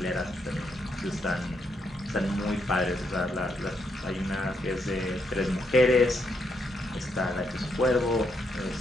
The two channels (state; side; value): normal; both; correlation 0.77